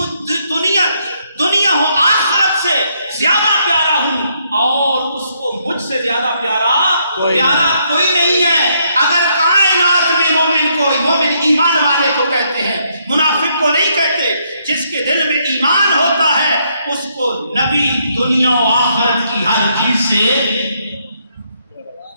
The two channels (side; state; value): both; inverted; correlation -0.74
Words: دنیا و آخرت سے زیادہ پیارا ہوں اور اس کو مجھ سے زیادہ پیارا کوئی نہیں ہے. اگر کائنات میں مومن ایمان والے کو کہتے ہیں, منافق کو نہیں کہتے. جس کے دل میں ایمان ہوتا ہے اس کو نبی دنیا و آخرت کی ہر چیز سے